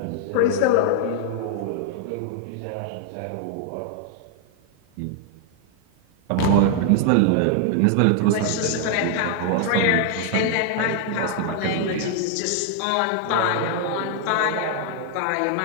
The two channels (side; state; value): both; different; correlation 0.00